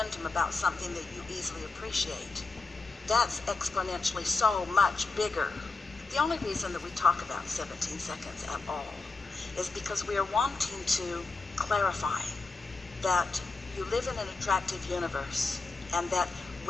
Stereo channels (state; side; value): quieter; right; 3.9 dB